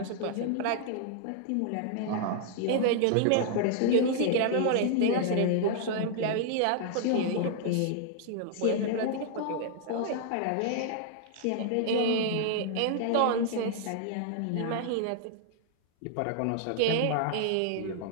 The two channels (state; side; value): different; both; correlation -0.01